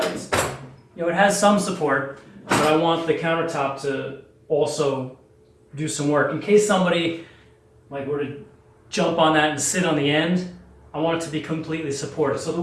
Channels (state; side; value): identical; both; correlation 1.00